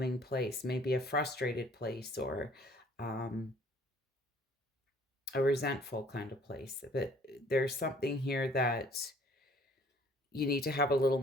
place, maybe a frustrated place or a resentful kind of place. But there's something here that you need to have a little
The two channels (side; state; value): both; normal; correlation 0.57